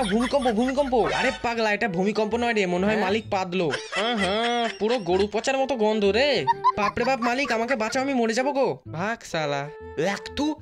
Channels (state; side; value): identical; both; correlation 1.00